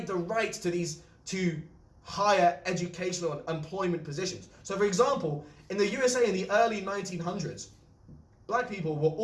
the right to higher educational and employment positions. So for example, in the USA in the early 1900s, black people were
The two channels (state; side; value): identical; both; correlation 1.00